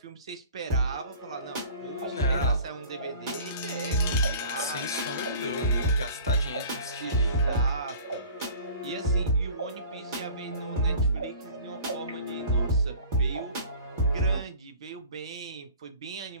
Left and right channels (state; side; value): inverted; both; correlation -0.46